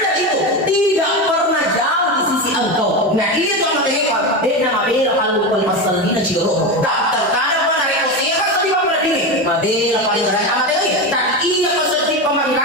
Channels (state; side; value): normal; both; correlation 0.18